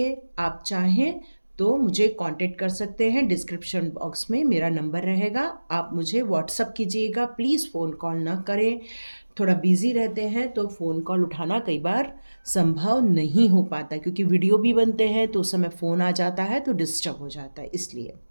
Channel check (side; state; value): both; inverted; correlation -1.00